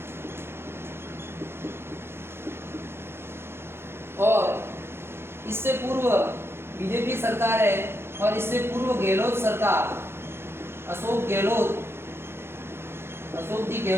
और इससे पूर्व बीजेपी सरकार है और इससे पूर्व गहलोत सरकार, अशोक जी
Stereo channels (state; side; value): late; left; 0.12 ms